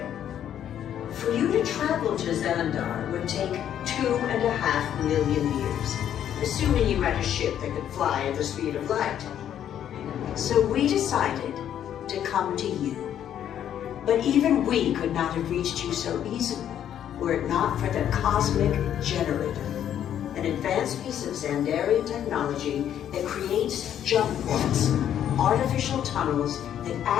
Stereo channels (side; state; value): right; quieter; 10.2 dB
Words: For you to travel to Xandar would take 2.5 million years, assuming you had a ship that could fly at the speed of light. So we decided to come to you. But even we could not have reached you so easily were it not for the Cosmic Generator, an advanced piece of Xandarian technology that creates jump points, artificial tunnels that